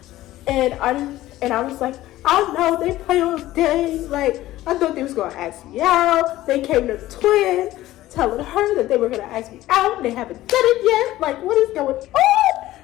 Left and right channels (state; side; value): quieter; right; 15.6 dB